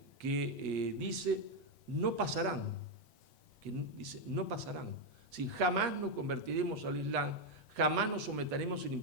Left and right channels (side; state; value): left; late; 7.5 ms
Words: que dice, no pasarán. Sí, jamás nos convertiremos al Islam, jamás nos someteremos al